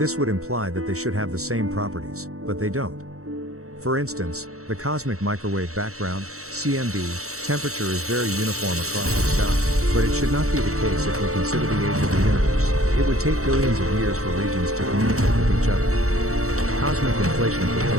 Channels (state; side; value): late; left; 0.64 ms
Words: would imply that they should have the same properties, but they don't. For instance, the cosmic microwave background, CMB, temperature is very uniform across the sky, but it should not be the case if we consider the age of the universe. It would take billions of years for regions to communicate with each other. Cosmic inflation